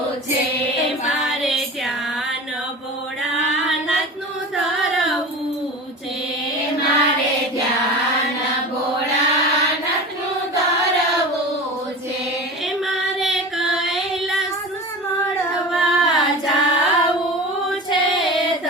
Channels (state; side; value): normal; both; correlation 0.32